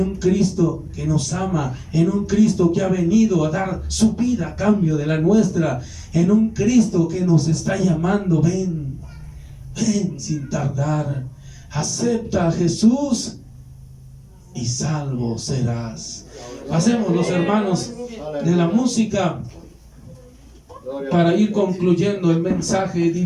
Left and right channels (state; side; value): identical; both; correlation 1.00